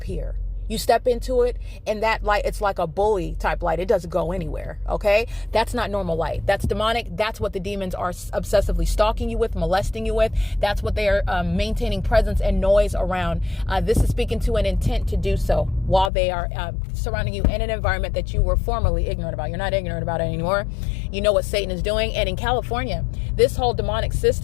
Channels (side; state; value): right; drops out; at 16.1 s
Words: You step into it and that light, it's like a bully type light. It doesn't go anywhere. Okay. That's not normal light. That's demonic. That's what the demons are obsessively stalking you with, molesting you with. That's what they are maintaining presence and noise around. This is speaking to an intent to do so while they are surrounding you in an environment that you were formerly ignorant about. You're not ignorant about it anymore. You know what Satan is doing. And in California, this whole demonic